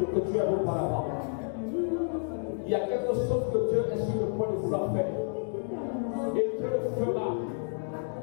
que Dieu a vu par là-bas. Il y a quelque chose que Dieu est sur le point de vouloir faire. Et Dieu le fera.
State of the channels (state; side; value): silent; right; digital silence